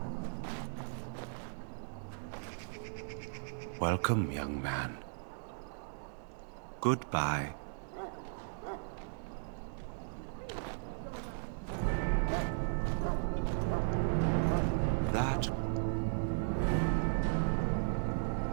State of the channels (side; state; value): left; silent; digital silence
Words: Welcome, young man. Goodbye. That...